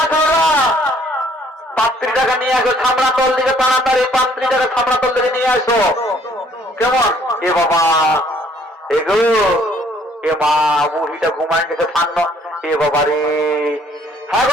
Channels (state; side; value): normal; both; correlation 0.62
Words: খাওয়া 35 নিয়ে আসো, ছামড়া তল দিকে তাড়াতাড়ি 35 ছামড়া তল দিকে নিয়ে আসো। কেমন? এ বাবা, এগো এ মা, বুড়িটা ঘুমায় গেছে ফান্ন। এ বাবা রে, হ্যাঁ